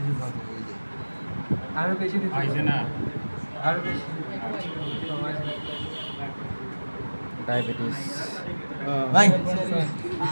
পাশে ওই যে আরো বেশি দিতে আইছে না, আরো বেশি। ডায়াবেটিস ভাই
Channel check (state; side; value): inverted; both; correlation -1.00